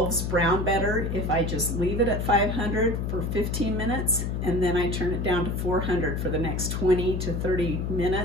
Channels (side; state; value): left; noise; hum, 2 dB below the sound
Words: brown better if I just leave it at 500 for 15 minutes and then I turn it down to 400 for the next 20 to 30